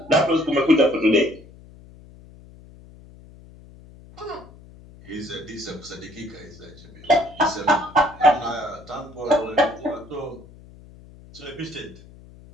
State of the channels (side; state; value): left; noise; hum, 21 dB below the sound